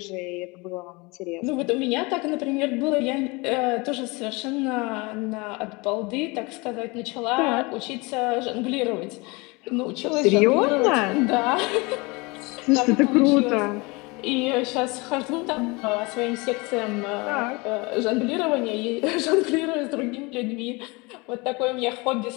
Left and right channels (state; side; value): quieter; right; 26.1 dB